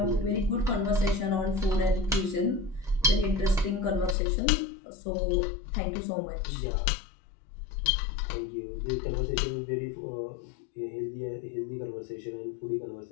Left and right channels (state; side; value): drops out; right; at 4.2 s